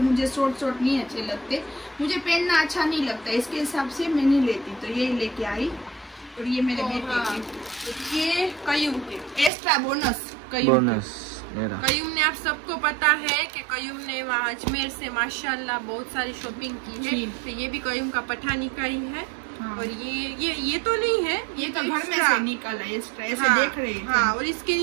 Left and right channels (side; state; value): left; drops out; at 9.5 s